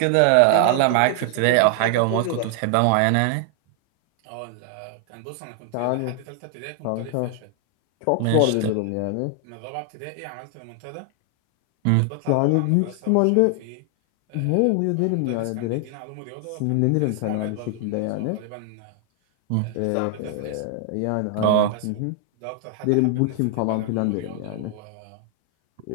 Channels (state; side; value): different; both; correlation 0.00